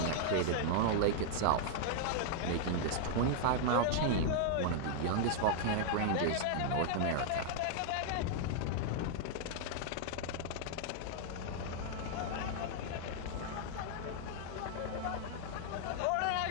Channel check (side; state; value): both; different; correlation -0.01